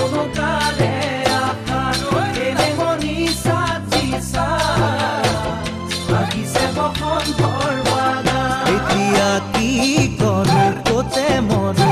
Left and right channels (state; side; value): identical; both; correlation 1.00